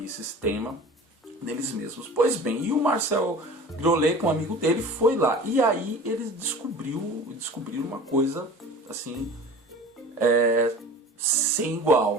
sistema deles mesmos. Pois bem, e o Marcel Griolet, com um amigo dele, foi lá. E aí eles descobriram uma coisa assim, sem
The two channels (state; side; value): normal; both; correlation 0.40